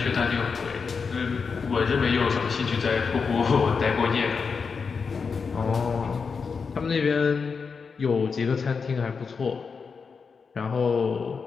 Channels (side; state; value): right; quieter; 5.4 dB